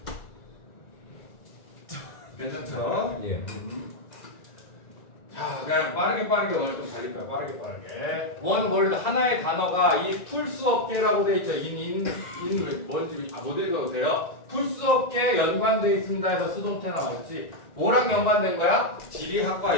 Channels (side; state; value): right; late; 1.9 ms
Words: 괜찮죠? 예. 자, 그냥 빠르게 오늘 좀 달릴 거야. 빠르게. 원월드 하나의 단어가 이 풀수 없게라고 돼 있죠. 뭔지 못 읽어도 돼요. 풀수 없게 연관되어 있습니다 해서 수동태 나왔지. 뭐랑 연관된 거야? 지리학과